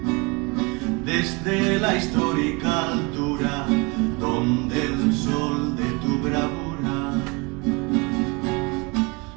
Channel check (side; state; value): left; quieter; 28.4 dB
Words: desde la histórica altura donde el sol de tu bravura